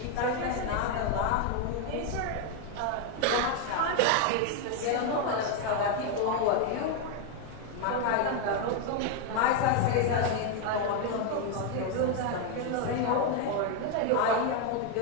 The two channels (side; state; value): both; different; correlation 0.01